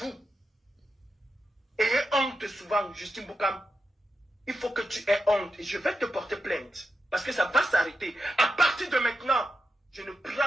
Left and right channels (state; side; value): normal; both; correlation 0.89